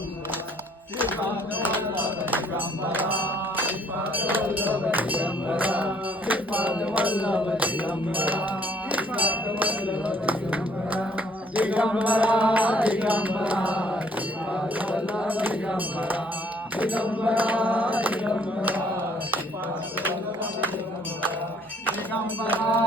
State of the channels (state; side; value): normal; both; correlation 0.62